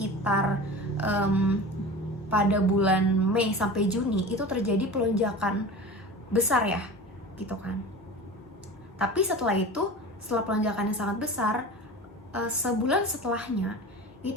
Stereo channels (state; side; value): normal; both; correlation 0.34